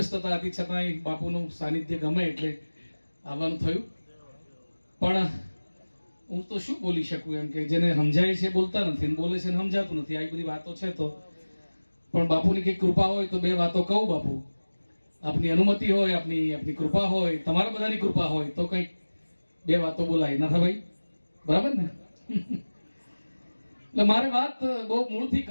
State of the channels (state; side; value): inverted; both; correlation -1.00